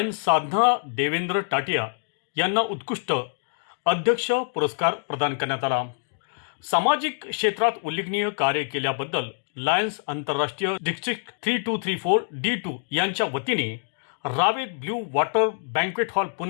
साधना देवेंद्र टाटिया यांना उत्कृष्ट अध्यक्ष पुरस्कार प्रदान करण्यात आला। सामाजिक क्षेत्रात उल्लेखनीय कार्य केल्याबद्दल लायन्स आंतरराष्ट्रीय डिस्ट्रिक्ट 3234 D2 यांच्या वतीने Ravet blue water banquet hall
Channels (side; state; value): right; silent; digital silence